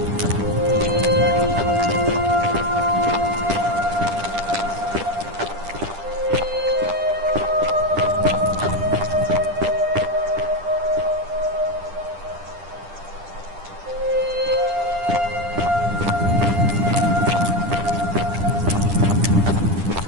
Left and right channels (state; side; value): late; left; 10 ms